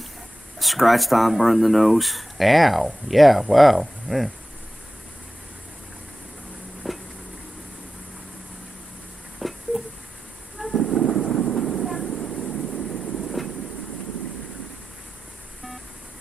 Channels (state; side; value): normal; both; correlation 0.93